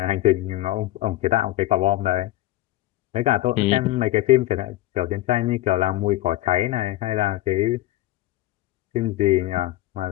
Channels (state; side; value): quieter; right; 16.4 dB